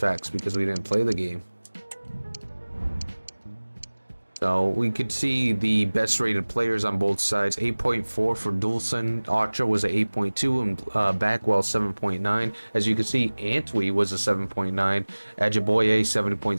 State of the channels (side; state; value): both; inverted; correlation -1.00